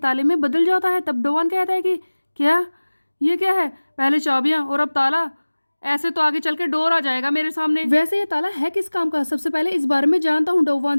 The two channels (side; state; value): both; inverted; correlation -1.00